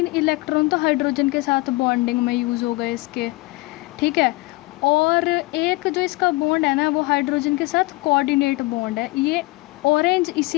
इलेक्ट्रॉन तो हाइड्रोजन के साथ बॉन्डिंग में यूज़ हो गए इसके. ठीक है, और एक जो इसका बॉन्ड है ना वो हाइड्रोजन के साथ कोऑर्डिनेट बॉन्ड है. ये ऑरेंज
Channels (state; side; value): quieter; right; 22.8 dB